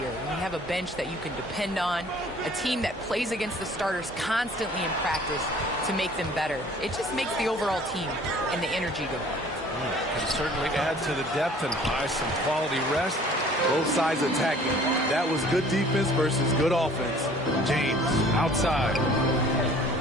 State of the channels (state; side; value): normal; both; correlation 0.52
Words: When you have a bench that you can depend on, a team that plays against the starters constantly in practice to make them better, it just makes the overall team and the energy go. Can certainly add to the depth and buy some quality rest. Both sides attacking. That was good defense versus good offense. James outside.